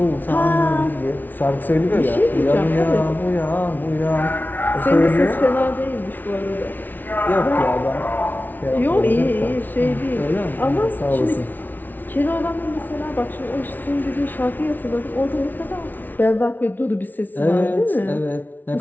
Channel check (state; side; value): late; right; 0.086 ms